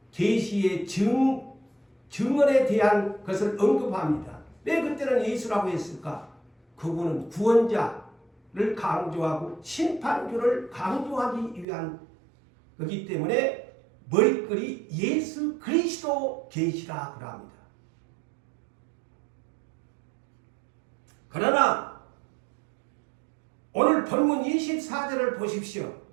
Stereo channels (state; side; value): drops out; left; at 11.7 s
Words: 계시의 증언에 대한 것을 언급합니다. 왜 그때는 예수라고 했을까? 그분은 구원자를 강조하고 심판주를 강조하기 위한 거기 때문에 머리글이 예수 그리스도 계시라 그럽니다. 그러나 오늘 본문 24절을 보십시오.